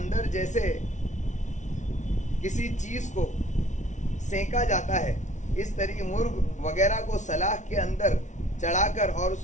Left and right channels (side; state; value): right; late; 0.36 ms